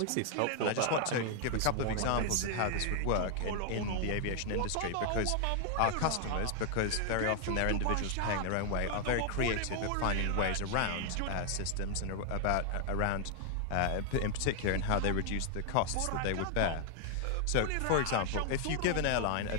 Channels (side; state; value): both; different; correlation 0.00